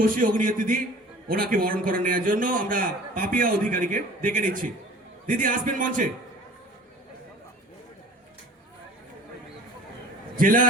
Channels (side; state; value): both; normal; correlation 0.46